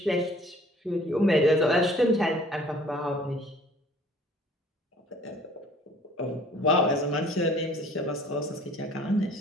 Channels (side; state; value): both; normal; correlation 0.53